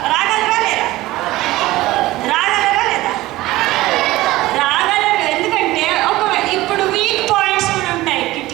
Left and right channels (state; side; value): quieter; left; 17.8 dB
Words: రాగలరా లేదా? రాగలరు. ఎందుకంటే ఇప్పుడు వీక్ పాయింట్స్ కూడా ఉంటాయి.